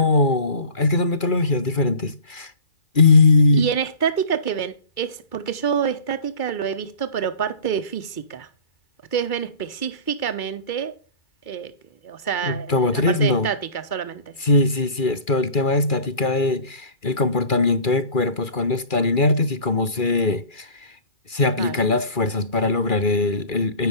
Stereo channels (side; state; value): right; late; 2.4 ms